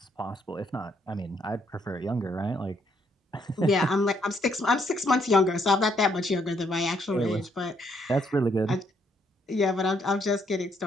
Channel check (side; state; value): both; normal; correlation 0.71